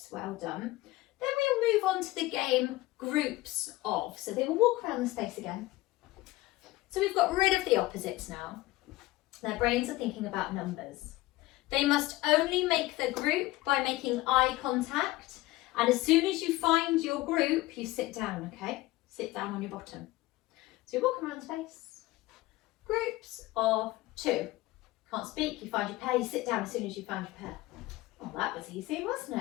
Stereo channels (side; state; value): right; quieter; 18.5 dB